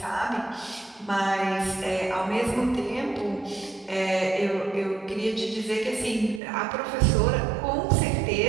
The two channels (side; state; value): left; drops out; at 6.4 s